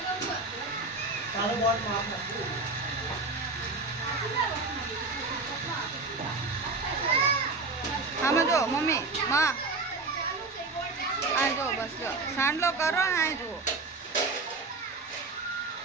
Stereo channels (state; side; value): quieter; left; 3.6 dB